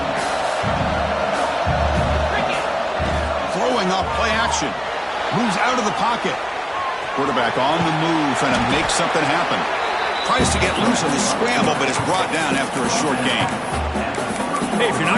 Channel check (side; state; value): both; identical; correlation 1.00